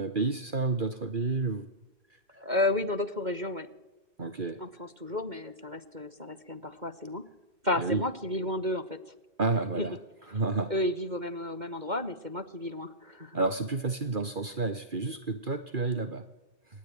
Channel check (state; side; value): late; left; 2.4 ms